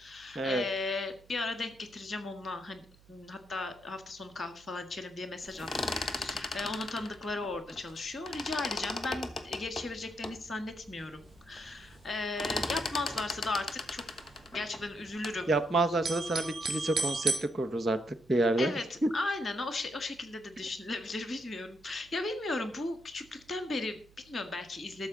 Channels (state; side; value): noise; right; hum, 26 dB below the sound